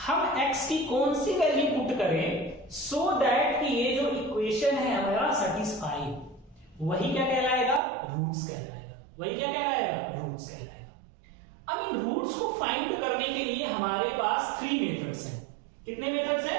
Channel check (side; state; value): left; drops out; at 7.8 s